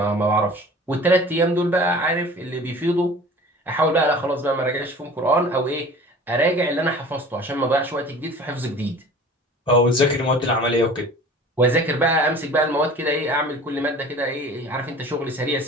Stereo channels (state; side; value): normal; both; correlation 0.43